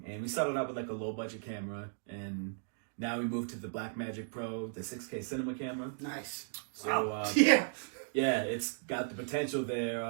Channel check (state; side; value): silent; left; digital silence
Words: And we started out with like a low budget camera, and now we moved to the Blackmagic Pro, the 6K cinema camera. Nice. So yeah, it's got the potential